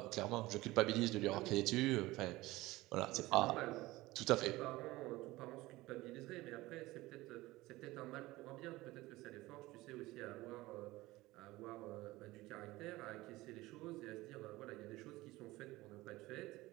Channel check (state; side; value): quieter; left; 19.0 dB